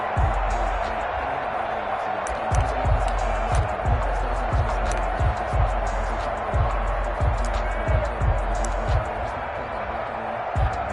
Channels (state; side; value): identical; both; correlation 1.00